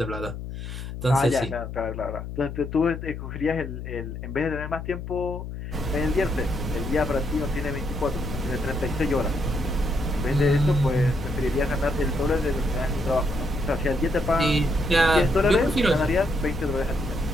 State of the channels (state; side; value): noise; left; hum, 8 dB below the sound